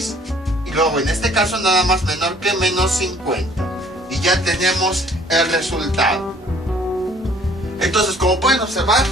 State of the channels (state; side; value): normal; both; correlation 0.57